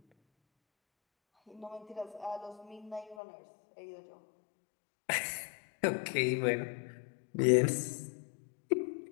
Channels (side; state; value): right; drops out; at 3.2 s